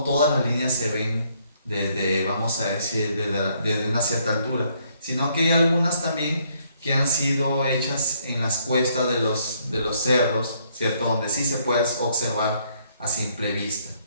todas las líneas se ven desde, vamos a decir, desde una cierta altura, sino que hay algunas también que han sido hechas en las cuestas de los cerros, ¿cierto? Donde sí se puede observar a simple vista,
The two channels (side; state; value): both; inverted; correlation -0.69